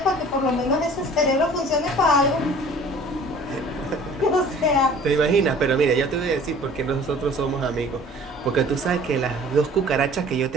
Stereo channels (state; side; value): normal; both; correlation 0.49